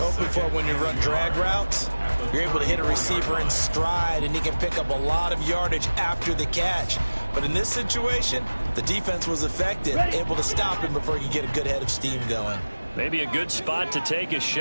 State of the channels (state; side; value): inverted; both; correlation -1.00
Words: for when you run drag routes, you're able to hit a receiver in stride, and he can pick up a lot of yardage after the catch. But in this situation, the defense was effective, able to stop him before he could get a good head of steam going. Maybe a good spot to take a